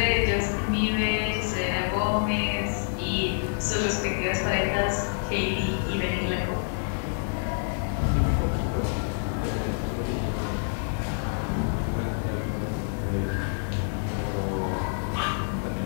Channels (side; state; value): right; silent; 60 dB below the other